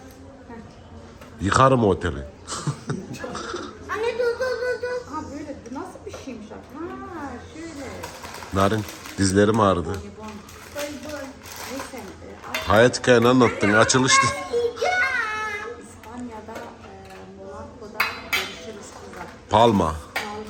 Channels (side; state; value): both; identical; correlation 1.00